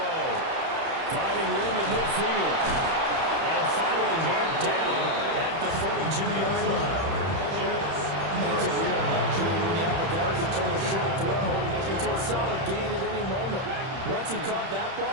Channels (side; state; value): left; late; 31 ms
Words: Finding room at midfield. And finally marked down at the 42-yard line. And it's a real luxury when you have a guy who can turn a short throw into a solid gain at any moment. Once he caught that